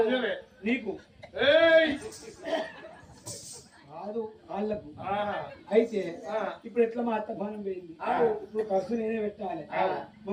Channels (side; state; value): both; identical; correlation 1.00